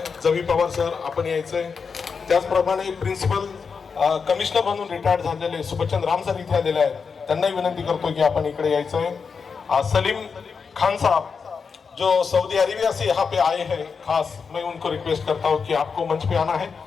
जवी पवार सर, आपण यायचंय. त्याचप्रमाणे प्रिन्सिपल कमिशनर म्हणून रिटायर्ड झालेले सुबचंद राम सर इथे आलेले आहेत. त्यांनाही विनंती करतो की आपण इकडे यायचंय. सलीम खान साहब जो सऊदी अरेबिया से यहाँ पे आए हैं, खास मैं उनको रिक्वेस्ट करता हूँ कि आपको मंच पे आना है.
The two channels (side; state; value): right; quieter; 5.6 dB